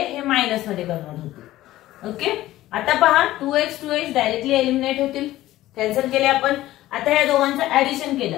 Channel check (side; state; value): right; quieter; 15.5 dB